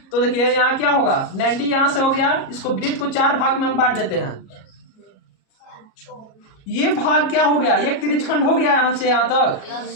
तो देखिए यहाँ क्या होगा? 90 यहाँ से हो गया, इसको वृत्त को 4 भाग में हम बांट देते हैं। ये भाग क्या हो गया? एक त्रिज्यखंड हो गया यहाँ से यहाँ तक।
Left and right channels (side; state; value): right; late; 37 ms